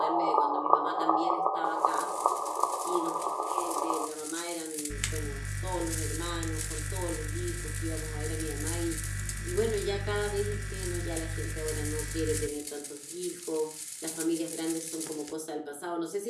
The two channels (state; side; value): identical; both; correlation 1.00